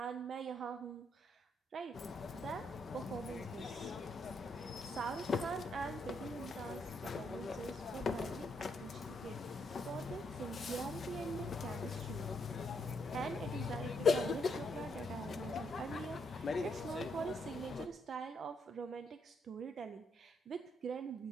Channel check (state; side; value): normal; both; correlation 0.76